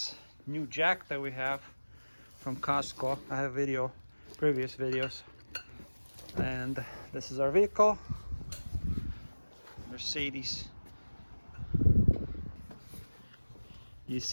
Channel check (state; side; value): inverted; both; correlation -1.00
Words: new jack that we have from Costco. I have previous videos. And this is our vehicle. Mercedes. You've